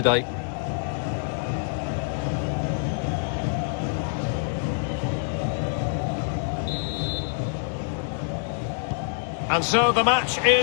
And so the match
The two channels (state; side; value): silent; right; digital silence